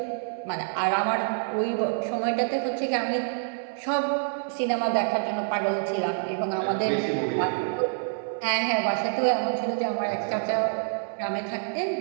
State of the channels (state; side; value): silent; left; digital silence